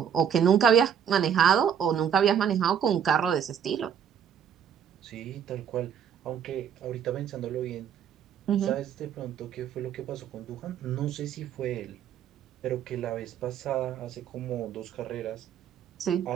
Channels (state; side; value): quieter; left; 8.4 dB